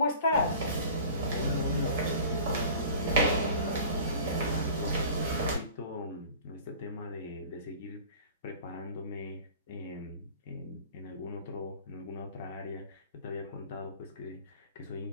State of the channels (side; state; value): both; inverted; correlation -0.44